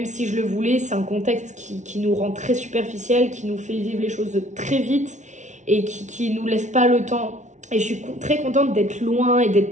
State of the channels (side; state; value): left; late; 0.35 ms